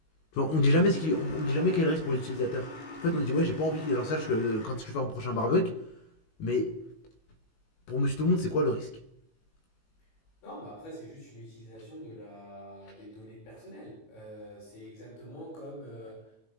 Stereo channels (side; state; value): right; late; 19 ms